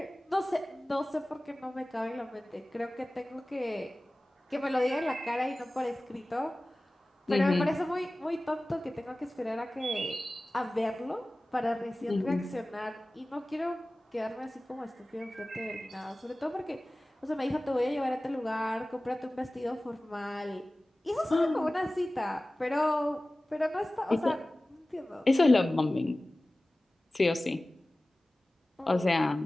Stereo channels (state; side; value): normal; both; correlation 0.97